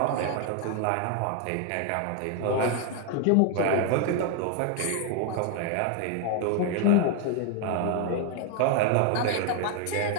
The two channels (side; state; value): both; different; correlation 0.01